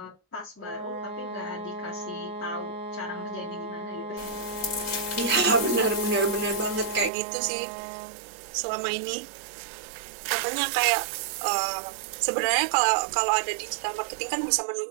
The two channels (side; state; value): left; drops out; at 7.1 s